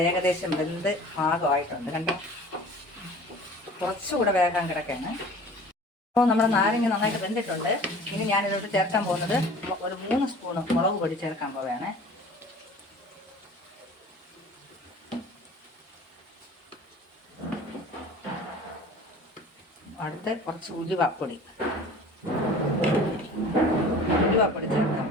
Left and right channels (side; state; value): both; normal; correlation 0.44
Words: ഏകദേശം വെന്ത് പാകമായിട്ടുണ്ട്. കണ്ടോ, കുറച്ചുകൂടെ വേഗം കിടക്കാണ്. അപ്പോൾ നമ്മുടെ നാരങ്ങ നന്നായിട്ട് വെന്തിട്ടുണ്ട്. ഇനി ഞാനിതോട്ട് ചേർക്കാൻ പോകുന്നത് ഒരു 3 സ്പൂണ് മുളക് പൊടി ചേർക്കാൻ പോവുകയാണ്. അടുത്ത് കുറച്ച് ഉലുവാപ്പൊടി ചേർക്കാൻ